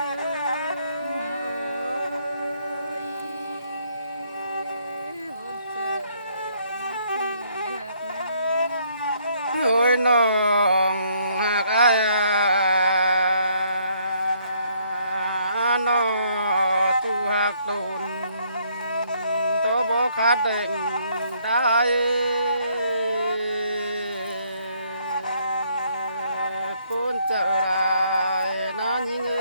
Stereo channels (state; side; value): inverted; both; correlation -0.68